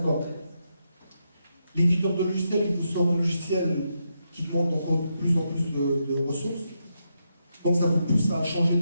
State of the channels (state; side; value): inverted; both; correlation -0.83